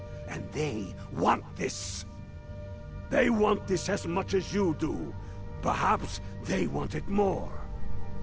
And they want this. They want this as much as you do. Perhaps they want it more.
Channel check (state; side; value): identical; both; correlation 1.00